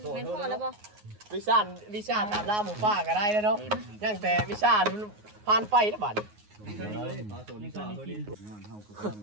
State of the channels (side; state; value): left; late; 9.5 ms